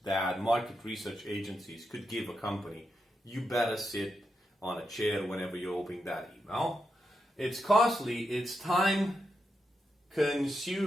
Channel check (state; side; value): normal; both; correlation 0.85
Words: that market research agencies could give a company. You better sit on a chair whenever you're opening that email. It's costly, it's time